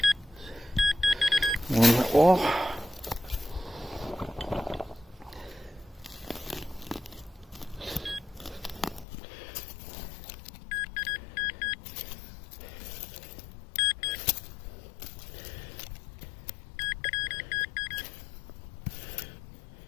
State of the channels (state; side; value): drops out; right; at 9.1 s